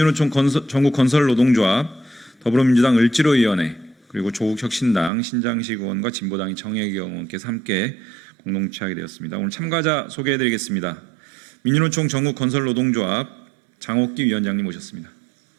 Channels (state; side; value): drops out; left; at 5.1 s